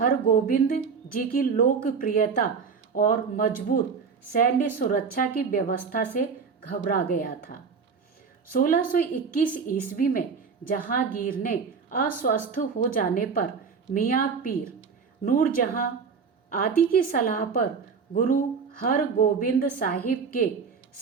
जी की लोकप्रियता और मजबूत सैन्य सुरक्षा की व्यवस्था से घबरा गया था। 1621 ईस्वी में जहांगीर ने अस्वस्थ हो जाने पर मियाँ पीर नूरजहां आदि की सलाह पर गुरु हरगोबिंद साहिब के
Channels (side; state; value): left; quieter; 5.6 dB